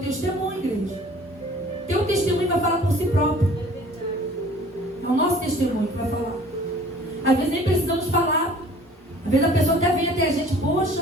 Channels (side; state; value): both; normal; correlation 0.50